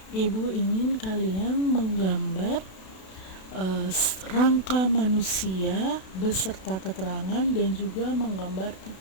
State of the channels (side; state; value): right; late; 32 ms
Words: Ibu ingin kalian menggambar rangka manusia beserta keterangan dan juga menggambar